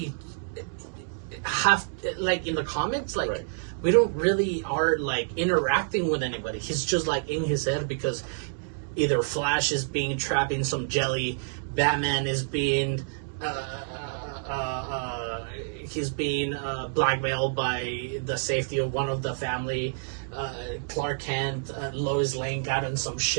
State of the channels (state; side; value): silent; left; digital silence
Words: have in the comics right. We don't really are interacting with anybody. He's just in his head, because either Flash is being trapped in some jelly, Batman is being he's being blackmailed by the safety of one of the family, Clark Kent, Lois Lane got in some